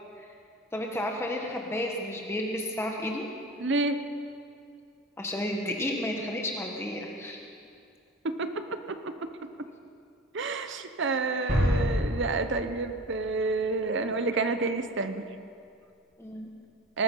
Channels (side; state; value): both; normal; correlation 0.35